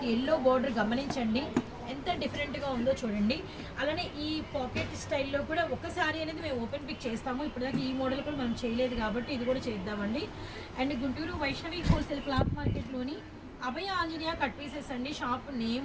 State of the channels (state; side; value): identical; both; correlation 1.00